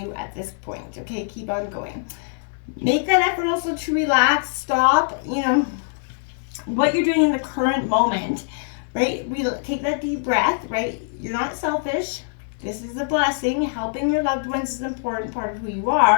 at this point, okay? Keep on going. Make that effort also to relax, stop, you know, what you're doing in the current moment, right? Take that deep breath, right? You're not selfish. This is a blessing. Helping your loved ones is an important part of who you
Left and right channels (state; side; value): silent; right; 63 dB below the other